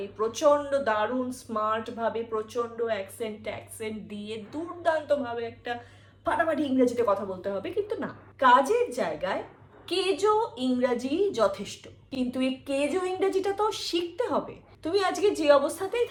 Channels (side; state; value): both; identical; correlation 1.00